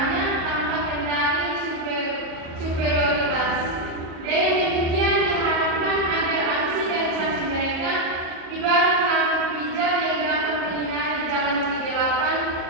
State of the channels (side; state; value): left; late; 37 ms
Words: tanpa kendali superioritas. Dengan demikian diharapkan agar aksi dan saksi mereka ibarat lampu pijar yang dapat menyinari jalan kegelapan